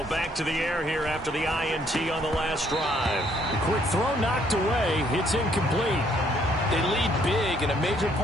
back to the air here after the INT on the last drive. The quick throw knocked away. It's incomplete. They lead big, and a major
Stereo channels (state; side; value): normal; both; correlation 0.67